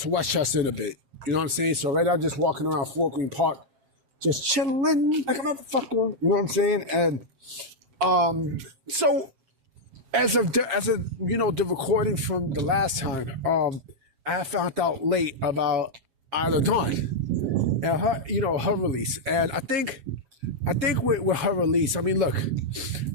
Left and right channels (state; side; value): late; left; 7.4 ms